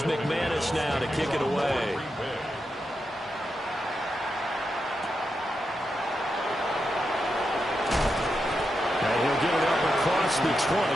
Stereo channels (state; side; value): normal; both; correlation 0.87